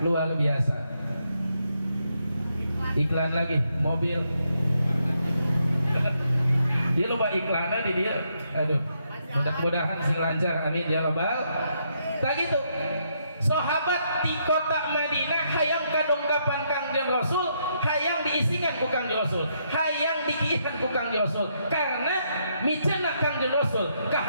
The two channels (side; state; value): both; inverted; correlation -0.76